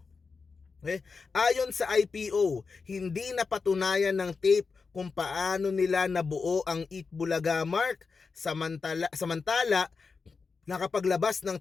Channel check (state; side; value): quieter; right; 4.8 dB